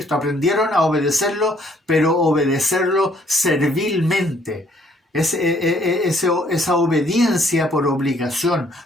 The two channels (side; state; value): both; normal; correlation 0.64